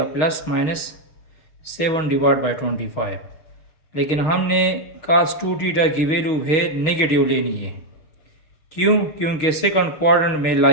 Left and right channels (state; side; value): late; right; 6.4 ms